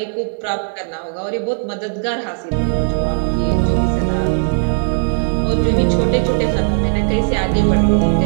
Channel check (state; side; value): silent; left; digital silence